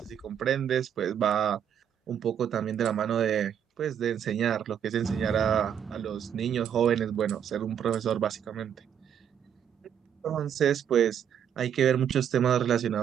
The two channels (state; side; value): quieter; left; 8.9 dB